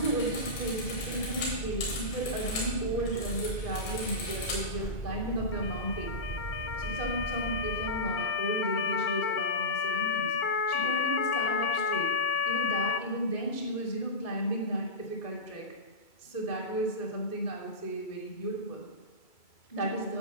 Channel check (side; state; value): right; late; 2.3 ms